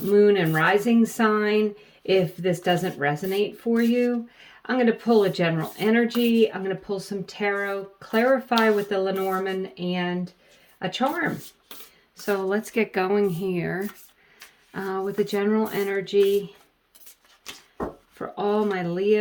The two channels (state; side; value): identical; both; correlation 1.00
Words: Moon and Rising sign if this doesn't resonate for you. I'm going to pull a general energy. I'm going to pull some tarot, clarify with the Lenormand, and a charm. So let's get going here with the general energy for all my